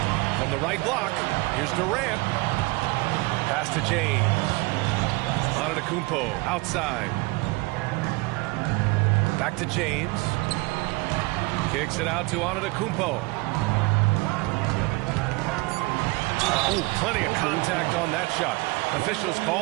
From the right block, here's Durant. Pass to James. Antetokounmpo outside. Back to James. Kicks it out to Antetokounmpo. Oh, plenty of contact on that shot. Officials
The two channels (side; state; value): left; quieter; 24.9 dB